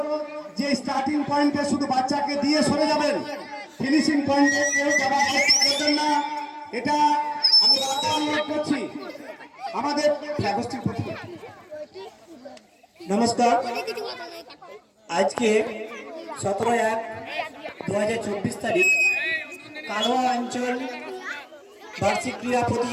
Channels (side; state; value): both; identical; correlation 1.00